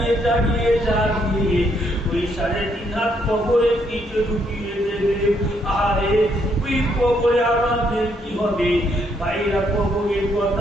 ওই 3.5 হাত কবরের নিচে ঢুকিয়ে দেবে। আরে ওই কবরে আমাদের কি হবে? ভাইরা কবরের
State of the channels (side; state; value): both; normal; correlation 0.73